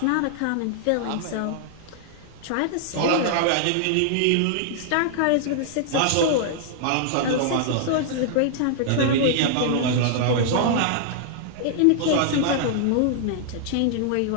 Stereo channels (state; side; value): different; both; correlation -0.01